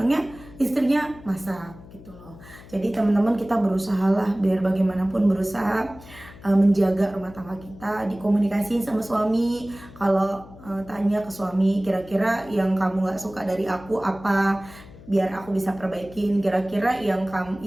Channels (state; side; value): noise; left; hum, 19 dB below the sound